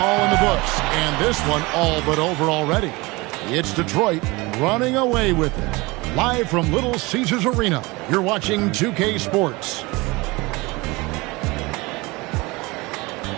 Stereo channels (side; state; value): left; quieter; 23.7 dB